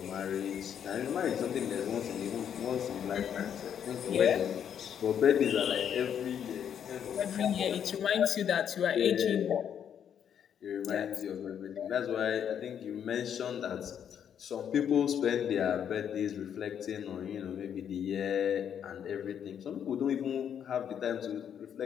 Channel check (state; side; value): quieter; right; 8.7 dB